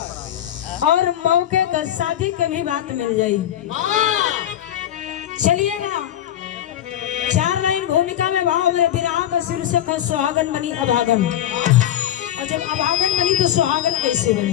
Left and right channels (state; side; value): quieter; right; 11.6 dB